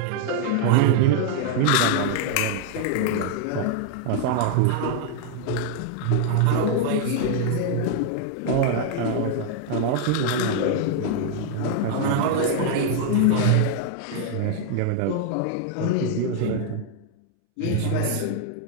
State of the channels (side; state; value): both; different; correlation 0.00